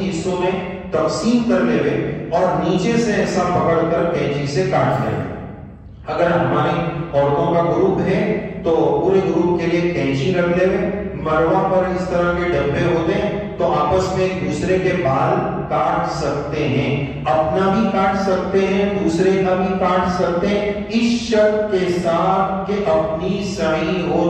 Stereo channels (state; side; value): identical; both; correlation 1.00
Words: حصوں میں تقسیم کر لے اور نیچے سے ایسا پکڑ کر کینچی سے کاٹ لیں۔ اگر ہماری عورتوں کا گروپ ہے تو پورے گروپ کے لیے کینچی رکھ لے، مروہ پر اس طرح کے ڈبے ہوتے ہیں، تو آپس میں ایک دوسرے کے بال کاٹ سکتے ہیں، اپنا بھی کاٹ سکتے ہیں، دوسرے کا بھی کاٹ سکتے ہیں، اس شرط کے ساتھ کہ اپنی سعی ہو